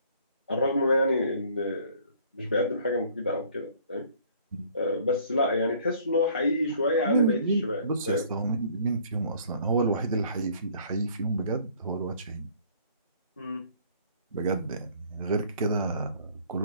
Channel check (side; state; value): both; inverted; correlation -0.57